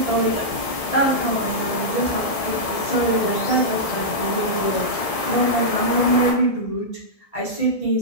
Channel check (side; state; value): right; late; 1.7 ms